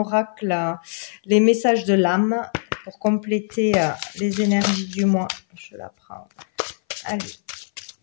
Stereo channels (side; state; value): right; silent; 59 dB below the other